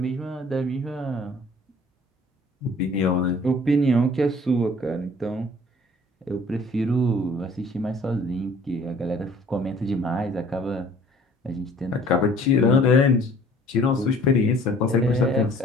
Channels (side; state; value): both; normal; correlation 0.53